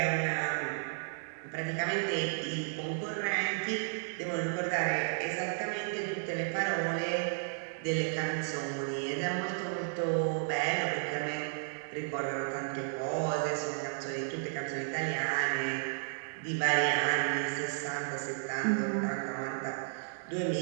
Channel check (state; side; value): silent; left; digital silence